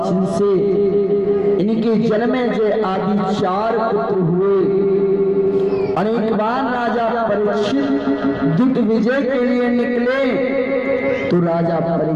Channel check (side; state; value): right; noise; rumble, 25 dB below the sound